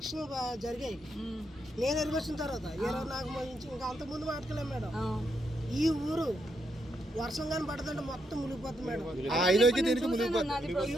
జరిగాయి. నేను ఎరుగొచ్చిన తర్వాత 24 ఇంకా అంతకుముందు మాట్లాడలేము మేడం. ఈ ఊరు వర్షం కానీ పడుతుంటే మొత్తం మునిగిపోతుంది మేడం.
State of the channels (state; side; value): normal; both; correlation 0.80